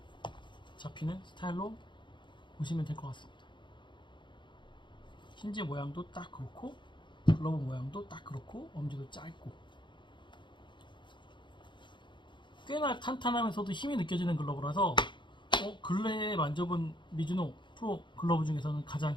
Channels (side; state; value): right; late; 0.23 ms